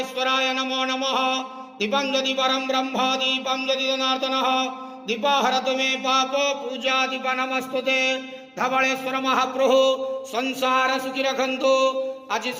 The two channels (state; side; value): identical; both; correlation 1.00